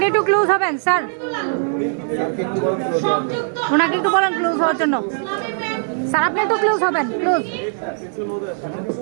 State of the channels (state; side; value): silent; left; digital silence